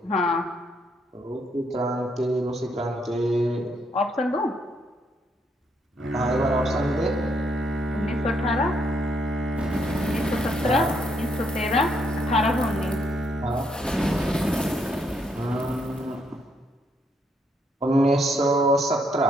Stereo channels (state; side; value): normal; both; correlation 0.74